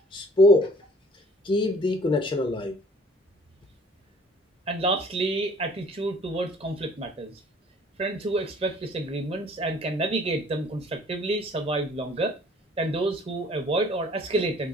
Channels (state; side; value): normal; both; correlation 0.54